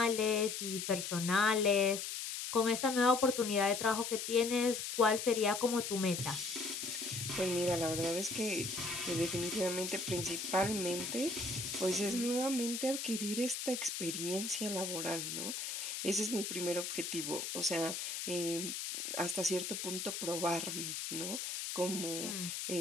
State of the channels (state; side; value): noise; left; hiss, 4 dB below the sound